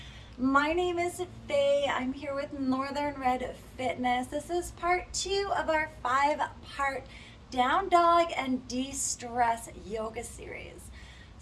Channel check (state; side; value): identical; both; correlation 1.00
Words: My name is Faye. I'm here with Northern Red Fitness. This is part 2 of our 5-part Down Dog and De-Stress yoga series.